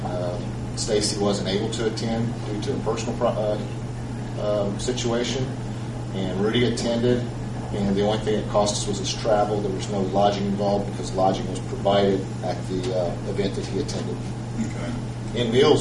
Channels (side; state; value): both; identical; correlation 1.00